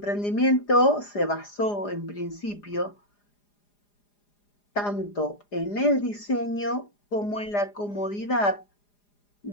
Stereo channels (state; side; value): late; right; 4.9 ms